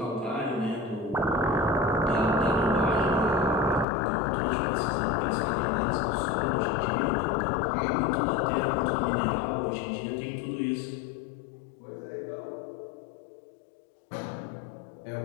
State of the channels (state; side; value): drops out; right; at 3.9 s